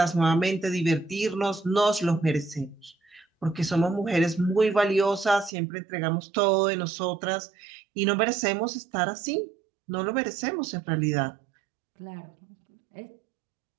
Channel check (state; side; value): drops out; left; at 5.5 s